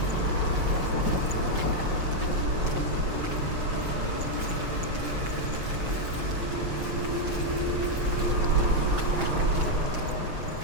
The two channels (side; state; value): left; late; 6.1 ms